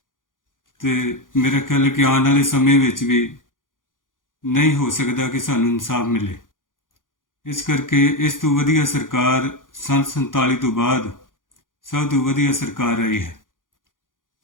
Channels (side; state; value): right; late; 0.89 ms